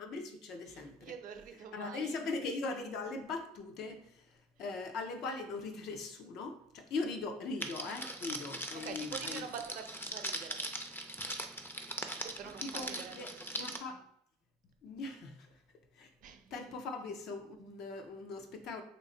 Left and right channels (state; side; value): normal; both; correlation 0.33